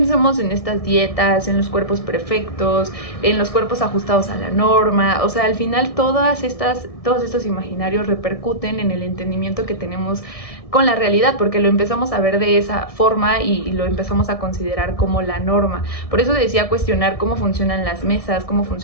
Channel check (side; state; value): right; late; 1.6 ms